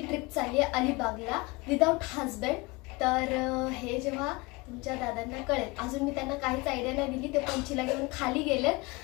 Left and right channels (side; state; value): right; quieter; 24.6 dB